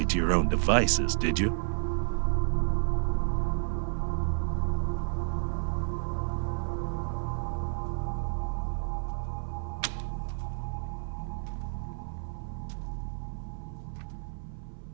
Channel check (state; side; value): silent; left; 57 dB below the other